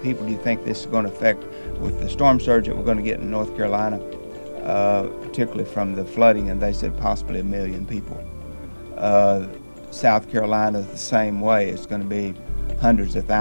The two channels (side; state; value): both; inverted; correlation -1.00